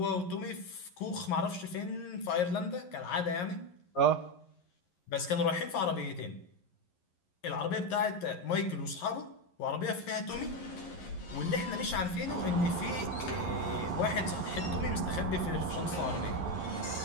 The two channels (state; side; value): late; right; 11 ms